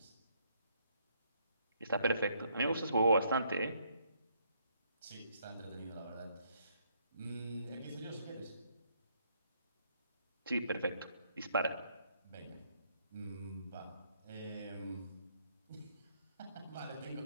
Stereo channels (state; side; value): inverted; both; correlation -0.70